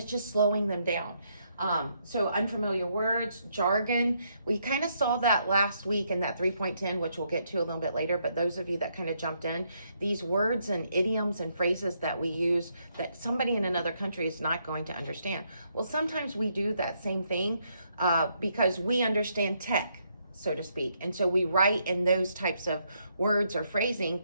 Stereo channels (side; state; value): both; inverted; correlation -0.75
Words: just slowing them down. So unfamiliar words, jargon, we kind of saw that last week in that 3.10, which we'll get to a little bit later, but those of you that kind of jumped in, these words and idioms and phrases that we use that somebody in another country is not going to understand. Well, sometimes we do that same thing because we understand tech, so to speak. And so we write in those types of words or phrasing